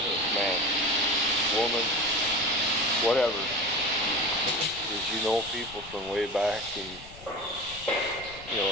woman, whatever. Is you know people from way back, and you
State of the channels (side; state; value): left; noise; rumble, 18 dB below the sound